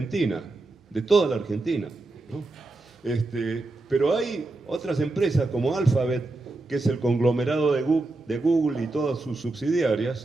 de toda la Argentina, ¿no? Pero hay otras empresas como Alphabet, que es el conglomerado de Google y todas sus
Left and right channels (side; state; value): left; quieter; 3.1 dB